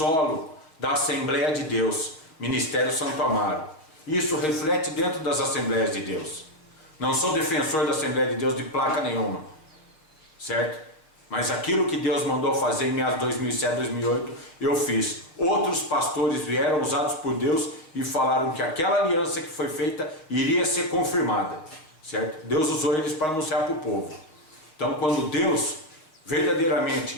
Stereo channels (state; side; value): late; right; 6.4 ms